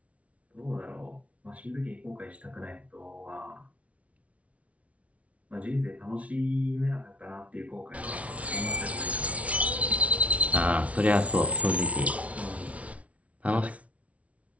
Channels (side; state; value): left; late; 0.065 ms